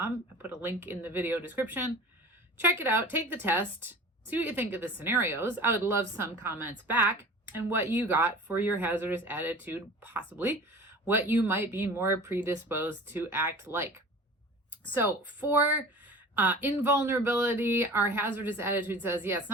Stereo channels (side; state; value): both; normal; correlation 0.40